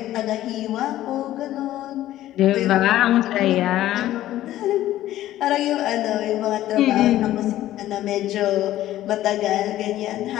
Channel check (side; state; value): right; quieter; 13.9 dB